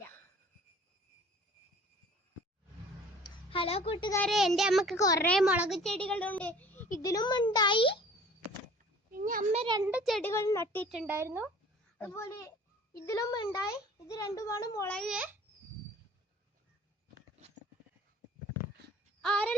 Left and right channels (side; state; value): both; normal; correlation 0.48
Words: ഹലോ കൂട്ടുകാരെ, എൻ്റെ അമ്മക്ക് കുറെ മുളക് ചെടികളുണ്ട്. ഇതിലും ഉണ്ടായി. പിന്നെ അമ്മ 2 ചെടികൾ നട്ടിട്ടുണ്ടായിരുന്നു. അതുപോലെ ഇതിലും ഉണ്ടായി. ഇത് 2മാണ് മുളക്.